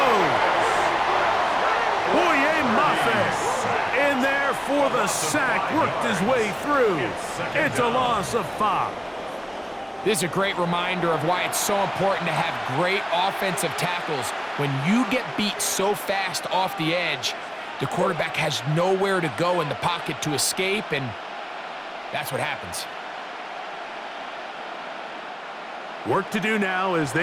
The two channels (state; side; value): identical; both; correlation 1.00